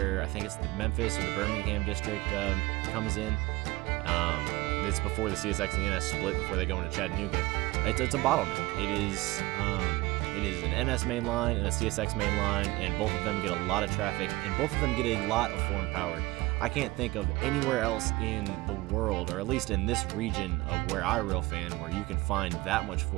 I think it's the Memphis or the Birmingham district comes in. It's before the CSX and the NS split, before they go into Chattanooga. It's a bottleneck. It is an NS main line and a CSX main line, and both of them get a lot of traffic, and both of them get a lot of foreign power. I can't think of anywhere else in the world, or at least in this region of where I rail fan, where you can find that much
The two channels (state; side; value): quieter; left; 21.1 dB